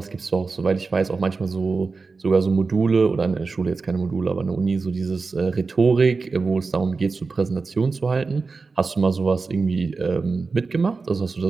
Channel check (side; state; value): left; quieter; 4.3 dB